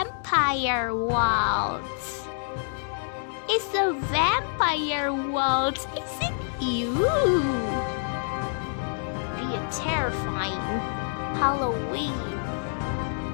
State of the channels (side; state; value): right; silent; digital silence